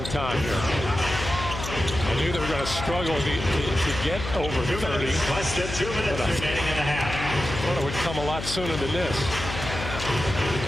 time here. I knew they were going to struggle to get over 30. Less than 2 minutes remaining in the half. I thought it would come a lot sooner than this.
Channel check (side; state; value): left; noise; hum, 7 dB below the sound